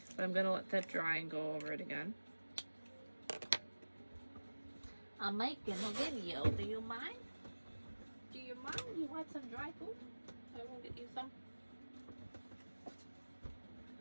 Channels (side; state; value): both; inverted; correlation -1.00